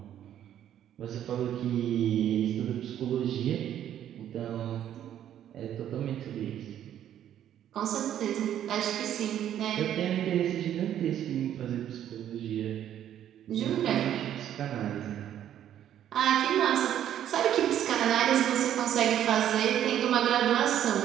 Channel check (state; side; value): quieter; left; 10.7 dB